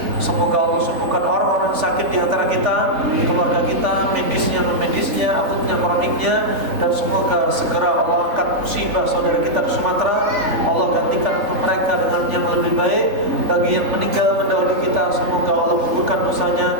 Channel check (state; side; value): late; left; 3.5 ms